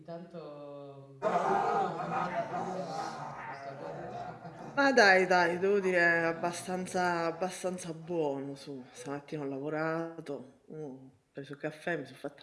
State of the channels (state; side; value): identical; both; correlation 1.00